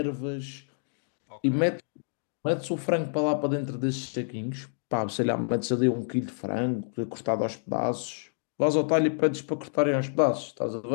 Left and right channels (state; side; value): silent; right; digital silence